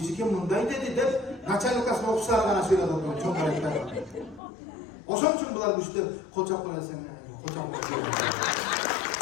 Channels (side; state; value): right; drops out; at 4.4 s